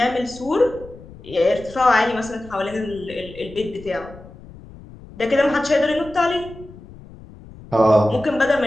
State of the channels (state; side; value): noise; left; rumble, 18 dB below the sound